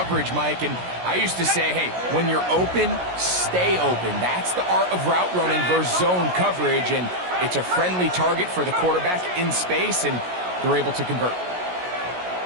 Mike. And I used to say, hey, when you're open, stay open. That's the art of route running versus zone coverage. And it's a friendly target for the quarterback in space, and they're able to convert.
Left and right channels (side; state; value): left; late; 17 ms